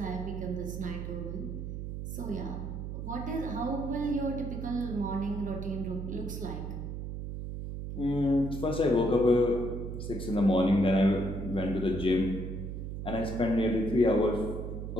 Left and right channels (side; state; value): right; noise; hum, 6 dB below the sound